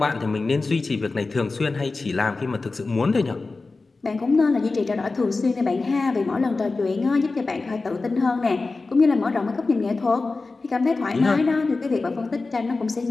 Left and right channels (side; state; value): right; quieter; 3.7 dB